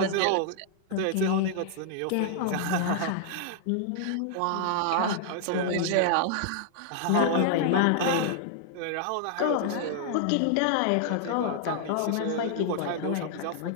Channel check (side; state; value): both; different; correlation -0.01